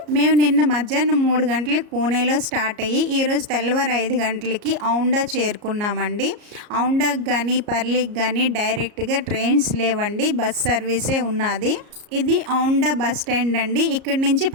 మేము నిన్న మధ్యాహ్నం 3 గంటలకు పూణేలో స్టార్ట్ అయ్యి ఈరోజు తెల్లవారు 5 గంటలకి ఔండా చేరుకున్నామండి. ఔండాకి కానీ పర్లికి కానీ డైరెక్ట్గా ట్రైన్స్ లేవండి, బస్ సర్వీసే ఉన్నది. ఇది ఔండా బస్ స్టాండ్ అండి. ఇక్కడి నుంచి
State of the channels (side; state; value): left; late; 34 ms